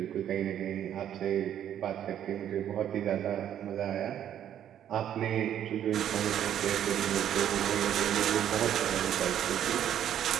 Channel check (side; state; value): left; quieter; 10.3 dB